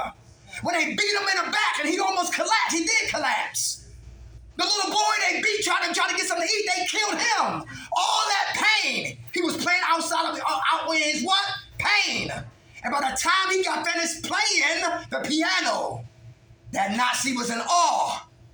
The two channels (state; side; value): identical; both; correlation 1.00